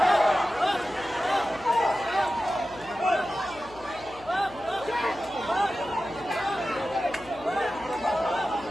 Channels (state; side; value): noise; left; hum, 21 dB below the sound